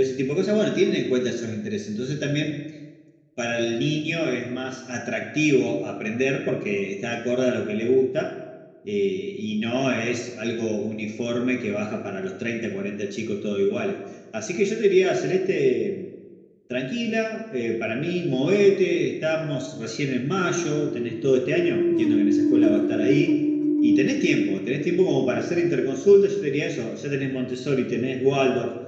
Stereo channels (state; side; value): identical; both; correlation 1.00